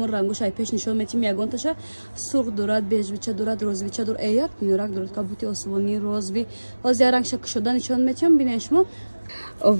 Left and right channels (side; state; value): both; inverted; correlation -1.00